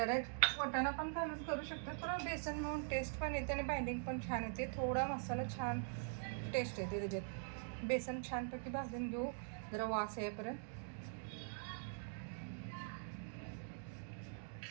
वाटाणा पण घालून करू शकतो, थोडं बेसन म्हणून टेस्ट पण येते आणि बाइंडिंग पण छान येते. थोडा मसाला छान टेस्ट येते त्याच्यात. बेसन छानपैकी भाजून घेऊ जरा वास येईपर्यंत.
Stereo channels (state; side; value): silent; left; digital silence